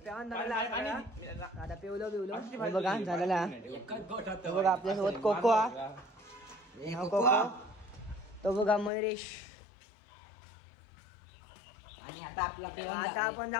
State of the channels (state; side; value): drops out; right; at 8.9 s